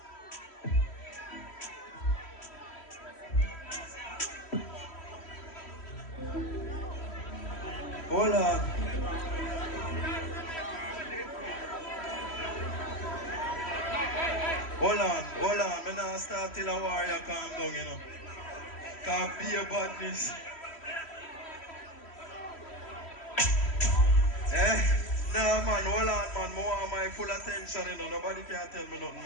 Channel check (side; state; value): right; late; 3.1 ms